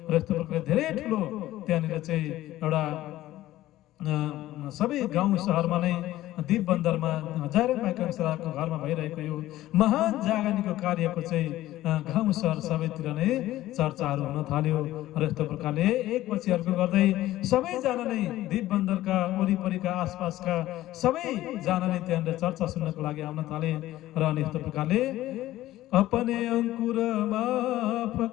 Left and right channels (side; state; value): right; quieter; 15.2 dB